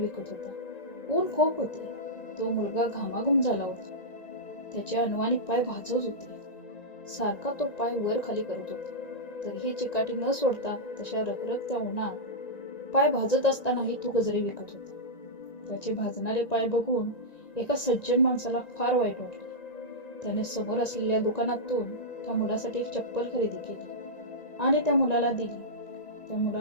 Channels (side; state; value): right; late; 1.9 ms